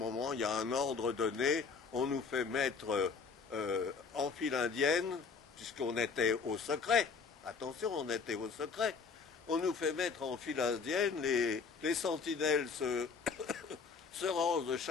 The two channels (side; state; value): right; quieter; 5.2 dB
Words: il y a un ordre donné. On nous fait mettre en file indienne, puisqu'on était au secret. Attention, on était au secret. On nous fait mettre en file indienne. Les sentinelles se rangent de